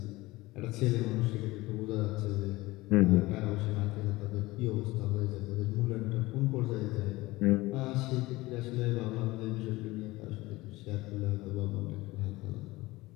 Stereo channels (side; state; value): right; quieter; 19.8 dB